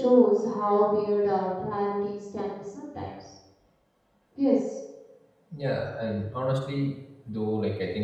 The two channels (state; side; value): identical; both; correlation 1.00